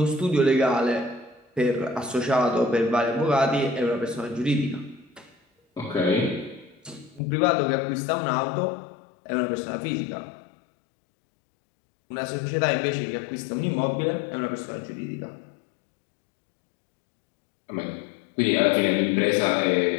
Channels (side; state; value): right; drops out; at 7.2 s